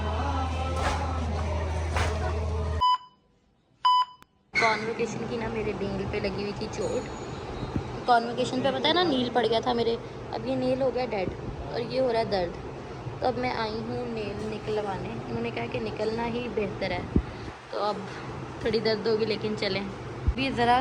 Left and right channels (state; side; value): identical; both; correlation 1.00